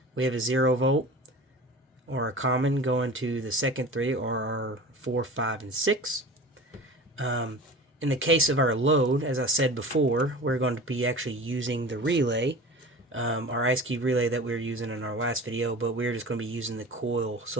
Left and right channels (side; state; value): both; normal; correlation 0.36